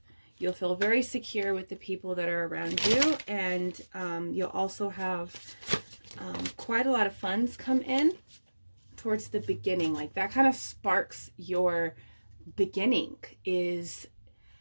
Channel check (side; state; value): both; inverted; correlation -1.00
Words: You'll feel very secure with the people that are around you, and you'll also have quite a lot of funds come in towards the beginning. Like, that kind of sparks your beginning, is